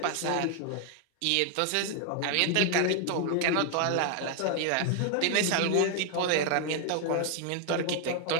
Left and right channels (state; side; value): different; both; correlation 0.00